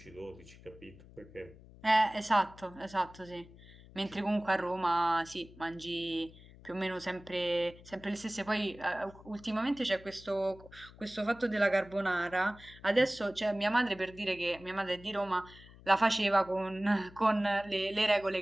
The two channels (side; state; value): left; noise; hum, 21 dB below the sound